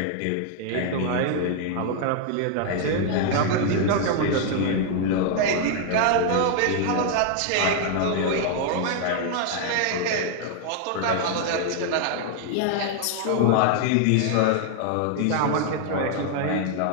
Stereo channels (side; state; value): both; different; correlation 0.00